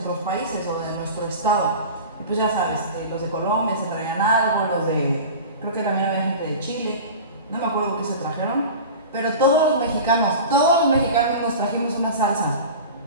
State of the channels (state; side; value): inverted; both; correlation -0.34